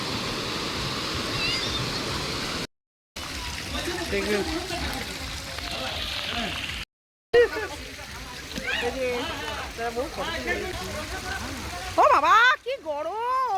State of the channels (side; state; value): both; identical; correlation 1.00